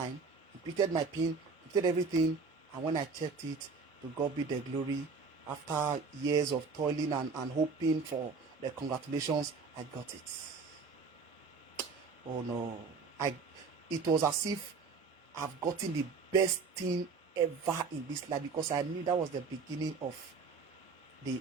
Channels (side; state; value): left; quieter; 4.8 dB